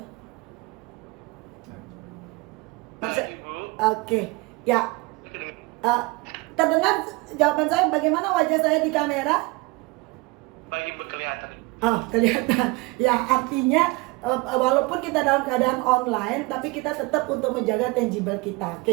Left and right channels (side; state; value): left; quieter; 24.5 dB